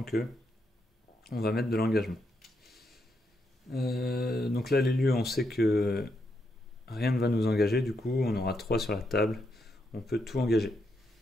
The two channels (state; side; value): normal; both; correlation 0.81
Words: que on va mettre de l'engagement. Donc là, les lieux, on sait que rien ne va nous engager. Du coup, on aura 3 sur la table. On peut tout engager.